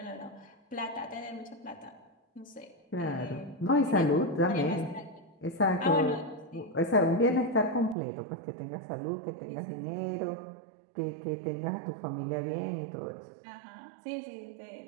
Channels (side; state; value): left; drops out; at 8.0 s